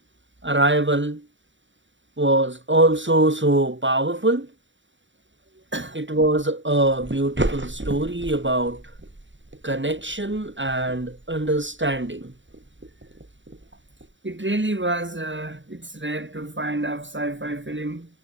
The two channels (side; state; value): left; late; 0.55 ms